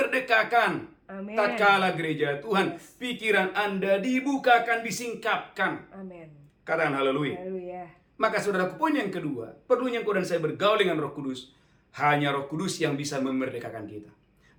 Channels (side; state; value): both; identical; correlation 1.00